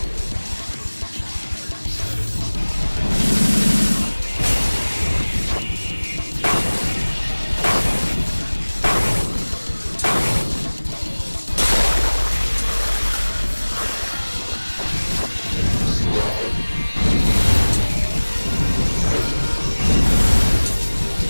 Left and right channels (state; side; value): inverted; both; correlation -1.00